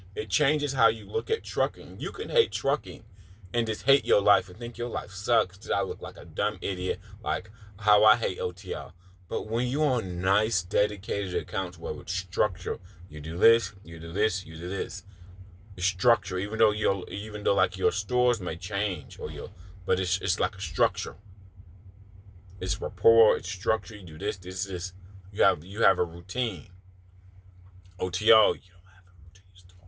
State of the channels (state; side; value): identical; both; correlation 1.00